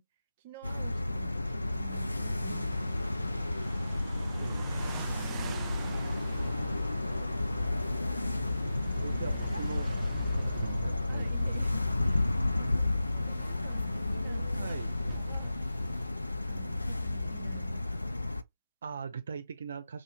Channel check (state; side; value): inverted; both; correlation -0.93